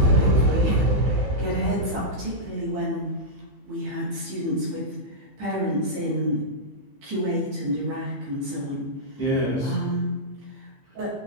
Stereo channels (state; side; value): late; left; 15 ms